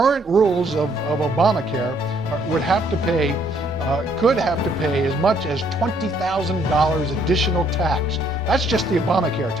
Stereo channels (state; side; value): normal; both; correlation 0.67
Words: rules of Obamacare could have to pay as much as $20,000 additional tax. That's just the Obamacare